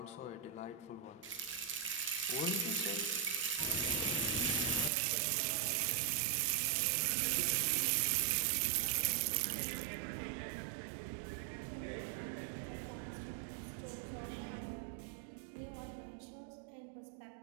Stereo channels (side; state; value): left; drops out; at 4.9 s